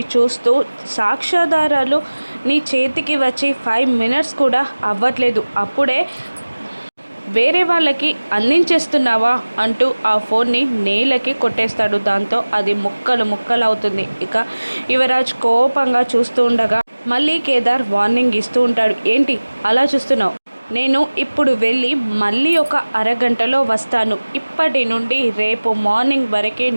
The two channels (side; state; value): both; inverted; correlation -1.00